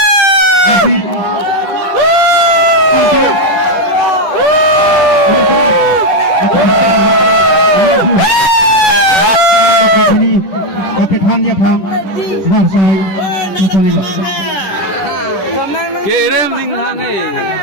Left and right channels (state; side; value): late; right; 10 ms